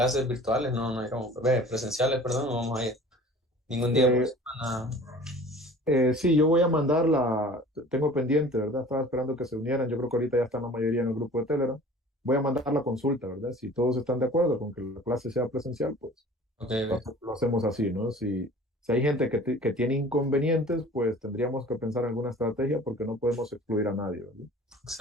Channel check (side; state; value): both; normal; correlation 0.45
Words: virtuales, no, no iremos. Presenciales, perdón, no vamos a ir ningún día por Eh, semana. sí, yo voy a mandar tengo pendiente, ¿verdad? Estaba esperando que se unieran, yo creo que ahorita ya están la mayoría en el grupo de Telegram. Voy a mandar la consulta, ¿verdad? Si todos están de acuerdo con que la clase sea presencial, pues Ok, ok. lo hacemos así, ¿no? Si hay gente que tiene inconvenientes, pues tendríamos que pensar en alguna estrategia porque no podemos excluir a nadie, ¿verdad? En ese